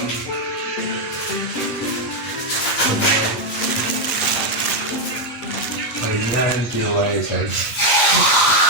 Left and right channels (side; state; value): right; late; 7.7 ms